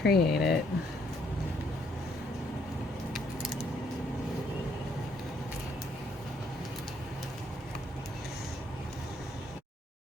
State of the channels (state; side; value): normal; both; correlation 0.69